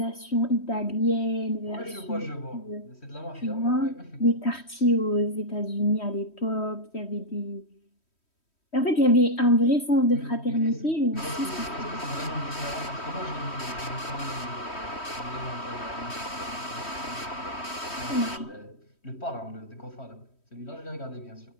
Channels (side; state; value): right; late; 3.1 ms